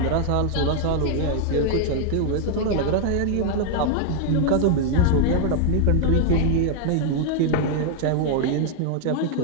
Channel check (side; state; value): both; different; correlation 0.00